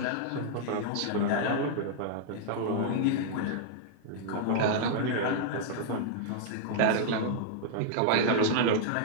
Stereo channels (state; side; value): different; both; correlation -0.01